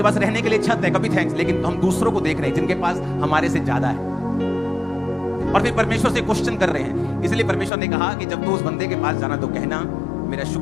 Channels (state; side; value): drops out; right; at 7.7 s